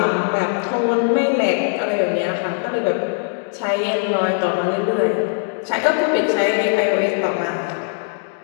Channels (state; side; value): silent; right; 66 dB below the other